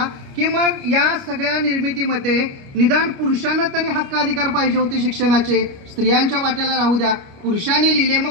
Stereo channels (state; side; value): late; left; 29 ms